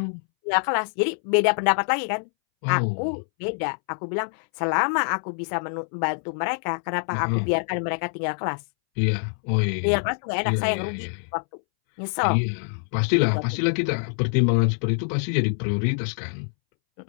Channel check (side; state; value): right; silent; 62 dB below the other